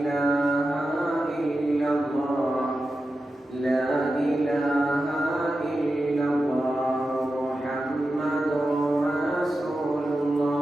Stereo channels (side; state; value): both; normal; correlation 0.91